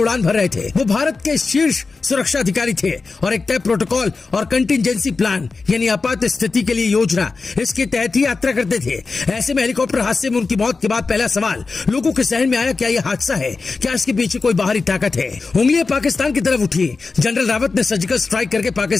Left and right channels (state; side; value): quieter; right; 4.2 dB